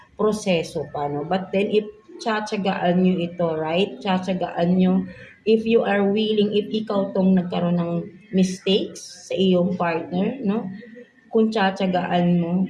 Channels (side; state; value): both; identical; correlation 1.00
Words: proseso pa, no? But then if tsatsagaan nyo ito, right? Tsatsagaan nyo if you are willing, if ikaw tong nagkaroon ng mistakes sa iyong partner, no? Kung tsatsagaan mo,